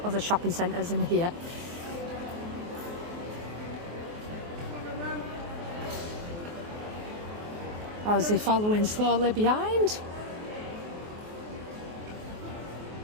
other shopping centres in here. Or is he following slowly behind?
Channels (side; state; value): left; late; 24 ms